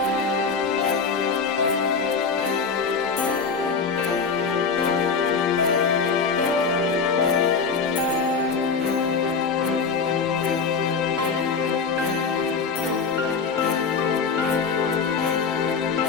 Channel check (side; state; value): right; quieter; 5.3 dB